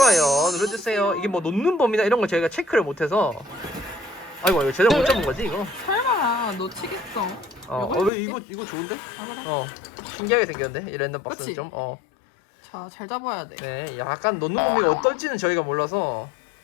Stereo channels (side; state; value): right; drops out; at 8.1 s